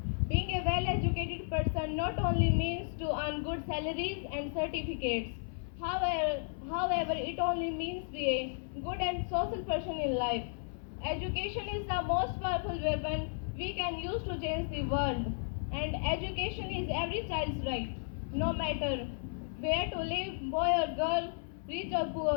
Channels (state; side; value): silent; right; 55 dB below the other